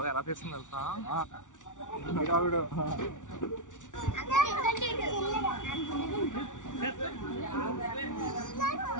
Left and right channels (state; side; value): late; right; 0.87 ms